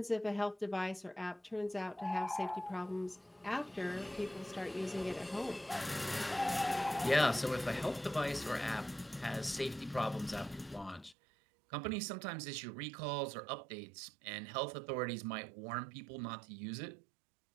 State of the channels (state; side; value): drops out; left; at 11.2 s